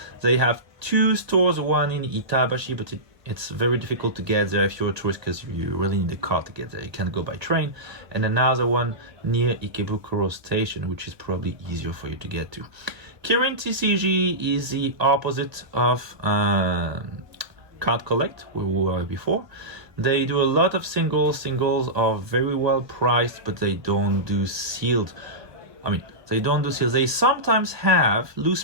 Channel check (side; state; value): left; late; 1.4 ms